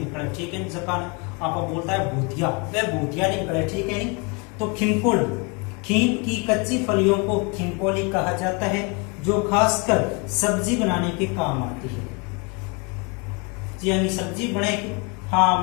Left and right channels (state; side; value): quieter; right; 30.9 dB